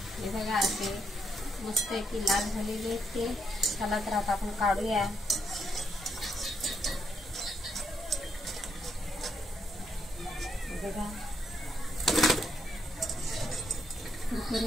हे बघा असे मस्त की लाल झालेले आहेत ते. चला तर आता आपण काढूया. बघा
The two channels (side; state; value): both; normal; correlation 0.77